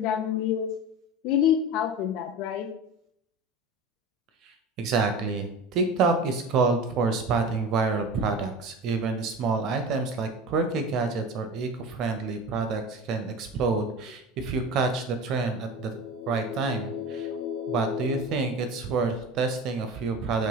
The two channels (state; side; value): normal; both; correlation 0.32